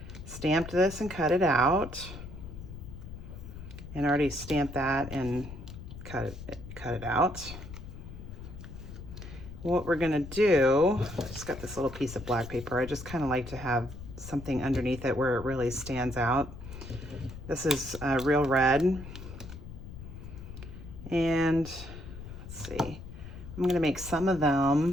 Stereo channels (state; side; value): noise; left; rumble, 12 dB below the sound